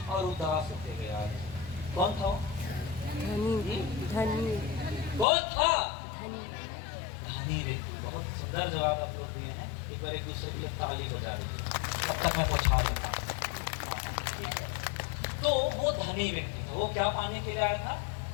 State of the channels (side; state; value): right; drops out; at 5.2 s